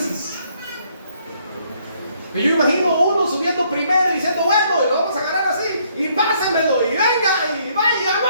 Yo imagino uno subiendo primero y diciendo, bueno, y lo vamos a agarrar así, y pásemelo, y venga, y vaya,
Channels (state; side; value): inverted; both; correlation -0.68